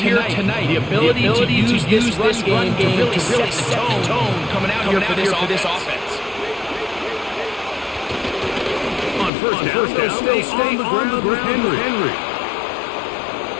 tonight. The ability to use this run game to really set the tone coming out here for this offense. On first down, stay on the ground with Henry.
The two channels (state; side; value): drops out; right; at 9.3 s